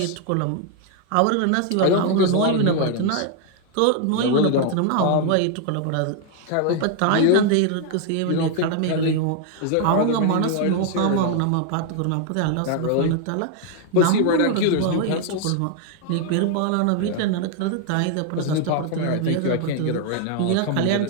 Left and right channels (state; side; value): different; both; correlation 0.00